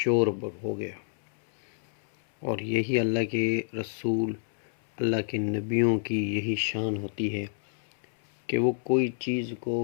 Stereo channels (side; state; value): right; silent; 59 dB below the other